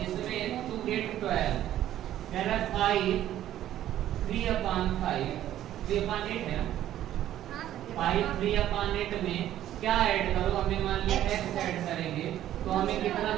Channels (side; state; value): left; quieter; 12.4 dB